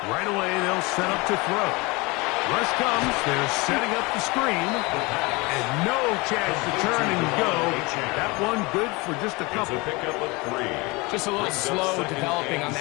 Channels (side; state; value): right; quieter; 25.3 dB